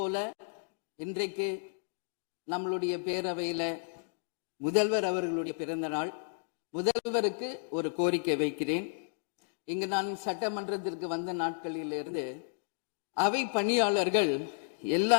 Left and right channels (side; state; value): right; silent; digital silence